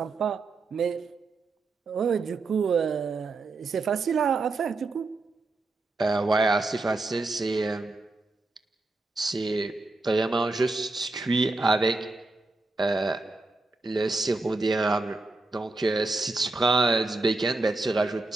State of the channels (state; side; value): quieter; left; 3.3 dB